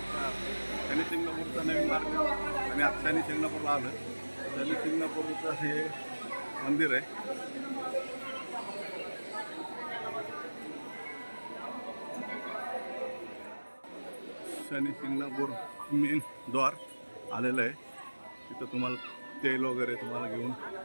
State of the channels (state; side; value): inverted; both; correlation -1.00